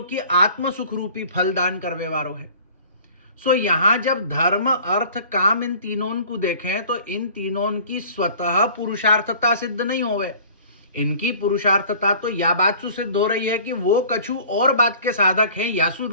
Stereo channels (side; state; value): both; inverted; correlation -0.48